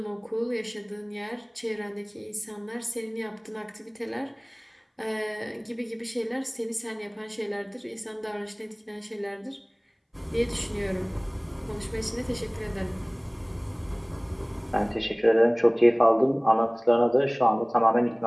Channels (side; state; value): both; identical; correlation 1.00